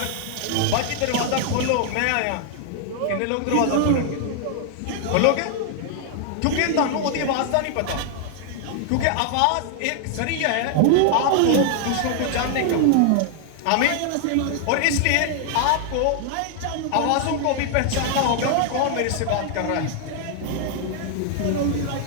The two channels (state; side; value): different; both; correlation 0.00